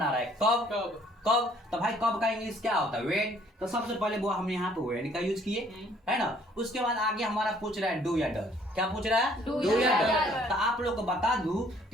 रहा है, कब। तो भाई कब का इंग्लिश क्या होता है, व्हेन। तो सबसे पहले वो हमने यहाँ पे व्हेन का यूज किए है ना। उसके बाद आगे हमारा पूछ रहा है डू या डज। क्या पूछ रहा है, डू या डज। तो आप लोग को बता दूं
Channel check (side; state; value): both; normal; correlation 0.61